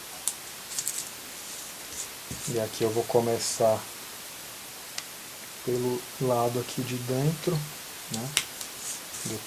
E aqui eu vou começar pelo lado aqui de dentro, né?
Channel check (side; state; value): both; identical; correlation 1.00